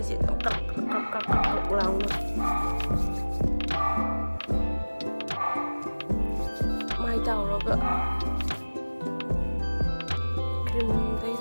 sih kak ulang mai tahu lo ke krim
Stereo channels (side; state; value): both; inverted; correlation -1.00